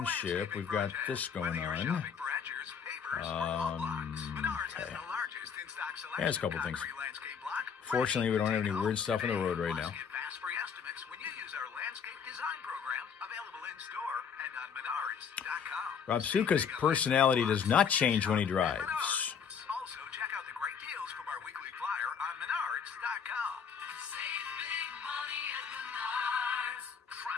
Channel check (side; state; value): right; quieter; 6.9 dB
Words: we've got this going on. Okay. Yeah, there's a couple things. Fortunately, we don't have any weird stuff on the road right now. Rob Suka's personality does not change when he drives. Also, check out the great deals from our weekly flyer on Menards.com. Save big money at Menards.